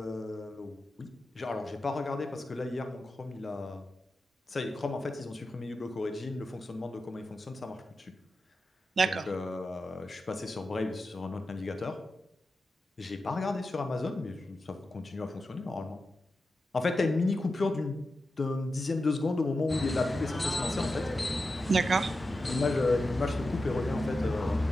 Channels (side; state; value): both; normal; correlation 0.91